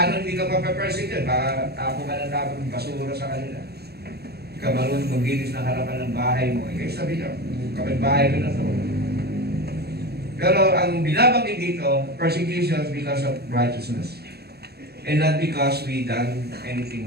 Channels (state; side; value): late; left; 0.47 ms